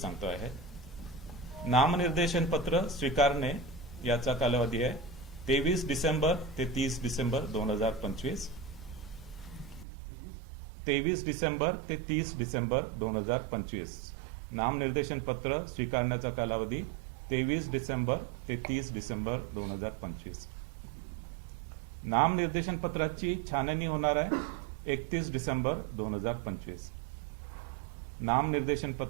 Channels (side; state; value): left; drops out; at 9.9 s